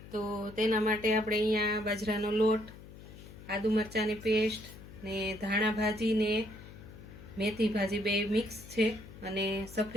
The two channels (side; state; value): left; noise; hum, 16 dB below the sound